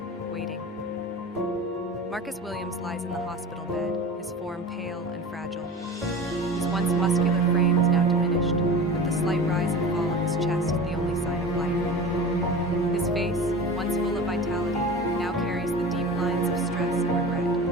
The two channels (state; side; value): normal; both; correlation 0.34